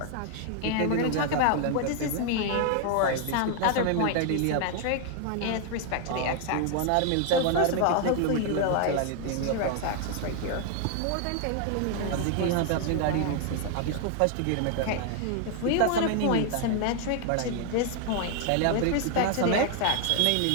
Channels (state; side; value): different; both; correlation 0.00